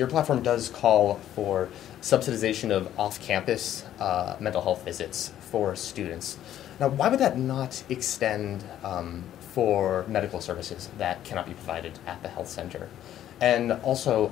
platform does call for subsidization of off-campus mental health visits for students. Now, why would that not extend for medical services that cannot be provided at the health center? And also,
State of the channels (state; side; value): quieter; right; 11.7 dB